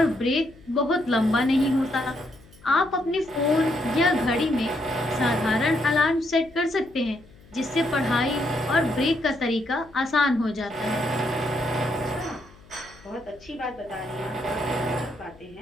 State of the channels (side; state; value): left; noise; hum, 25 dB below the sound